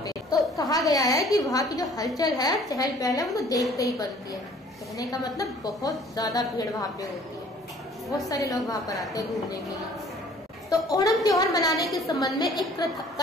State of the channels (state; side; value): normal; both; correlation 0.54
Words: तो कहा गया है कि वहाँ की जो हलचल है, चहल पहल है, वो देखते ही बनती है। कहने का मतलब बहुत ज्यादा भीड़ वहाँ पे होती है, बहुत सारे लोग वहाँ पर आते हैं घूमने के लिए। तो ओणम त्योहार मनाने के संबंध में एक